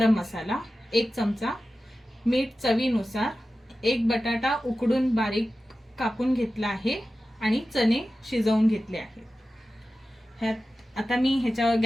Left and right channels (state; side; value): normal; both; correlation 0.94